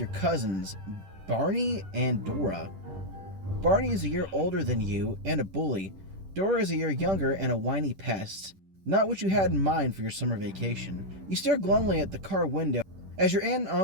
cousins, Barney and Dora. Barney is a year older than you and a bully. Dora is a year younger and a whiny pest. Not what you had in mind for your summer vacation. You stare glumly at the car window as your aunt and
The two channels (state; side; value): late; left; 10 ms